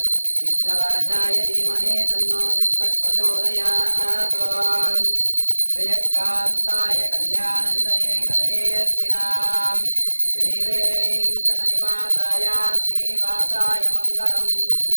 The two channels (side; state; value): both; inverted; correlation -1.00